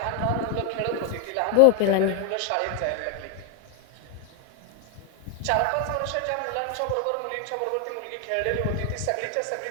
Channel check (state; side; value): different; both; correlation 0.00